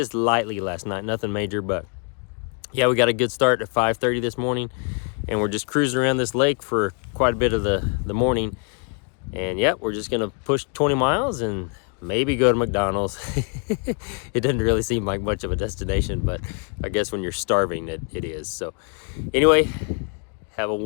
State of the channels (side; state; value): right; quieter; 39.1 dB